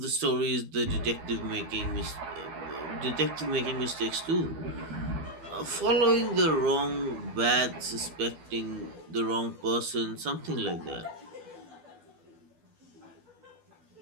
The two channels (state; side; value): late; left; 12 ms